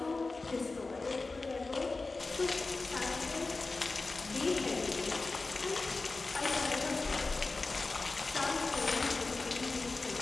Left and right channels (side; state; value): right; quieter; 3.6 dB